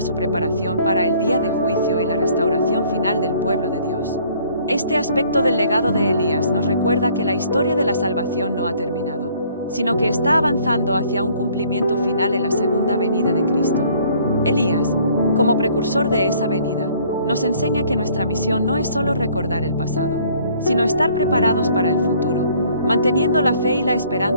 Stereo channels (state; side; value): inverted; both; correlation -0.59